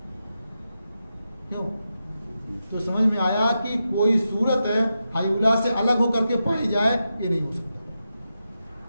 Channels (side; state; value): both; inverted; correlation -0.88